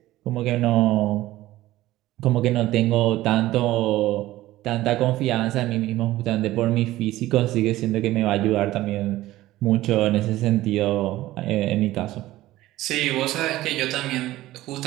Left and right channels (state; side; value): quieter; left; 16.2 dB